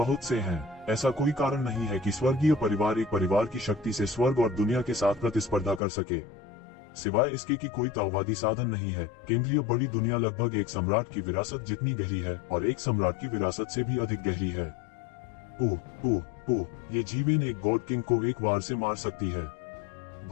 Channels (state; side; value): drops out; right; at 5.8 s